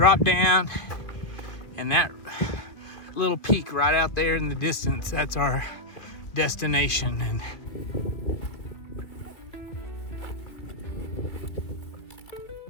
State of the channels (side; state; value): right; late; 2.5 ms